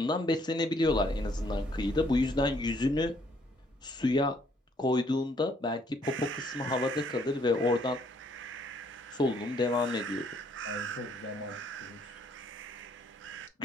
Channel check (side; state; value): both; normal; correlation 0.66